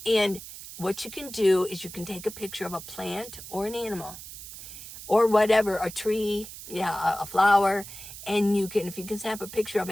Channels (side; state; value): right; noise; hiss, 13 dB below the sound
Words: And what you can do is you can take a picture of a plant or an animal or whatever, a tree, a flower, and if you can snap a picture of